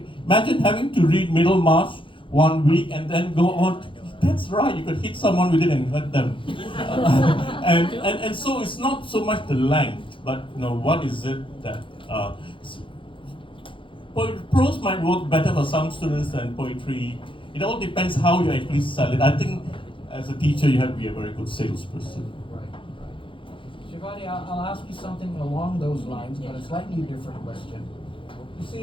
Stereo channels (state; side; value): late; right; 0.25 ms